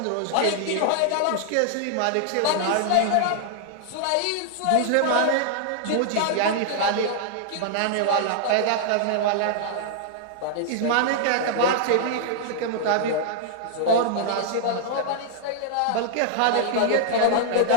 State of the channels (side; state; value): both; different; correlation -0.01